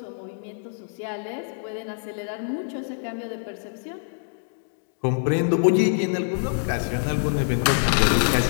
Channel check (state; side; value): silent; right; digital silence